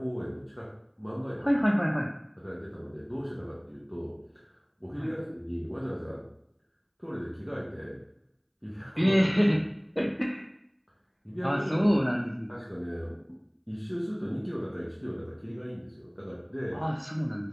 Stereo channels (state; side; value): identical; both; correlation 1.00